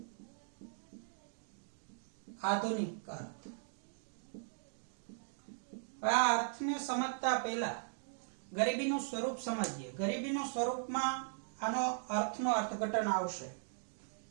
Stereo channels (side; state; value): left; silent; digital silence